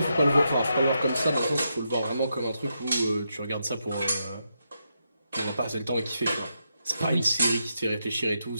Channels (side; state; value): both; inverted; correlation -0.83